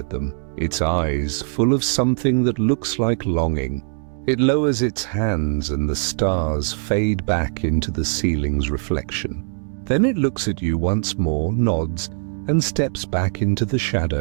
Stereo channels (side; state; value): left; silent; 59 dB below the other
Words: them, its eyes full of something that looks like longing. It lowers its hands and the stars fade back into the ceiling's reflection. Then it looks at you once more, nods, and steps back into the